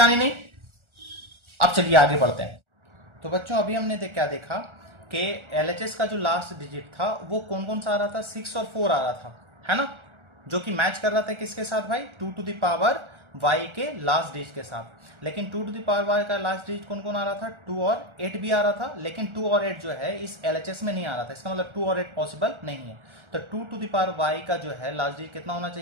नहीं। अब चलिए आगे बढ़ते हैं। तो बच्चों अभी हमने क्या देखा कि एलएचएस का जो लास्ट डिजिट था वो कौन कौन सा आ रहा था 6 और 4 आ रहा था, है ना, जो कि मैच कर रहा था किसके साथ भाई 2 टू द पावर y के लास्ट डिजिट के साथ। लेकिन 2 टू द पावर y का लास्ट डिजिट कौन कौन आ रहा था 2 और 8 भी आ रहा था, लेकिन 2 और 8 जो है इस एलएचएस में नहीं आ रहा था। इसका मतलब 2 और 8 पॉसिबल नहीं है। तो 2 टू द पावर y का जो है लास्ट डिजिट कितना होना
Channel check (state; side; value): late; left; 1.4 ms